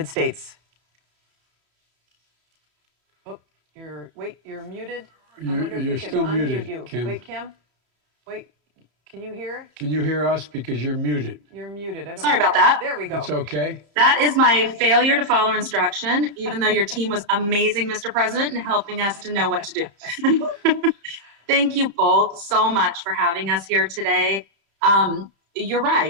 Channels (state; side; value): late; left; 33 ms